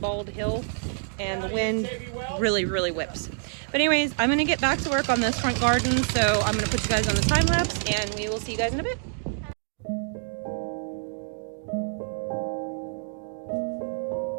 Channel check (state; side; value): silent; left; 60 dB below the other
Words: hill and the wind really, really whips. But anyways, I'm gonna get back to work on this front garden. So I'm gonna put you guys on the time lapse and we will see you guys in a bit.